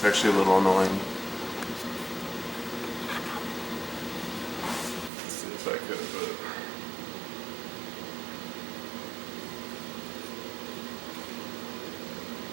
actually a little annoying. Let's see if I could have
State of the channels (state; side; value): drops out; left; at 5.1 s